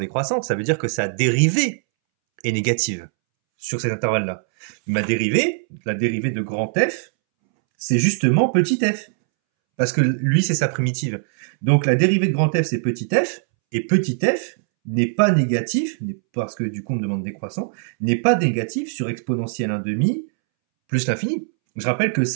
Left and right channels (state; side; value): silent; left; 65 dB below the other